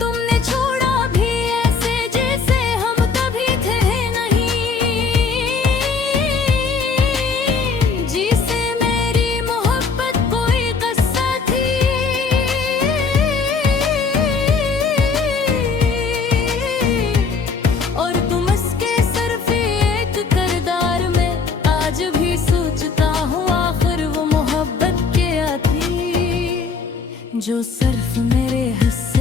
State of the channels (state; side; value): quieter; right; 5.1 dB